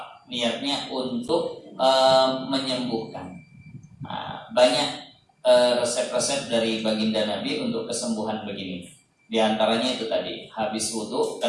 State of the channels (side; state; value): both; identical; correlation 1.00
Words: niatnya untuk menyembuhkan. Banyak resep-resep dari baginda Nabi untuk kesembuhan begini. Di antaranya itu tadi, habis wudu,